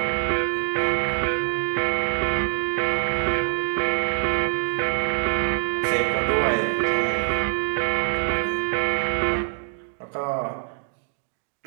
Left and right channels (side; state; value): left; silent; digital silence